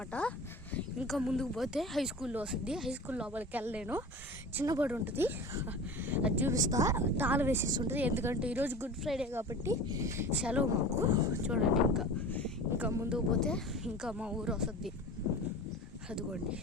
ఇంకా ముందుకు పోతే హై స్కూల్లో వస్తుంది. హై స్కూల్ లోపలికి వెళ్ళలేను, చిన్నబడి ఉంటుంది. అది చూపిస్తా. తాళం వేసేసి ఉంటుంది, ఎందుకంటే ఈరోజు గుడ్ ఫ్రైడే కాబట్టి సెలవు మాకు. చూడండి ఇంకా ముందుకు పోతే ఇంకా మా ఊరు వస్తుంది. అదిగోండి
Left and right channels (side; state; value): both; normal; correlation 0.36